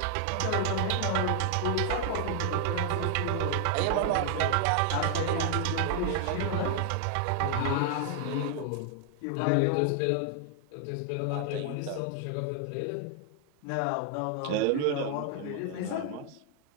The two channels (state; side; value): different; both; correlation 0.00